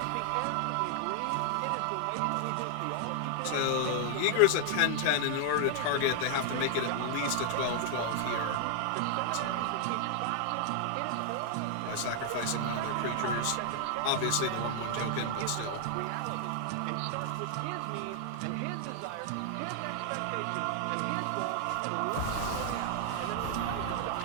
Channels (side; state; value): both; different; correlation 0.00